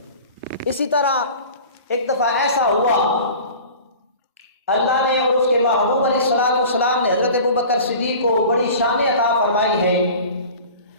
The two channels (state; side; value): inverted; both; correlation -0.40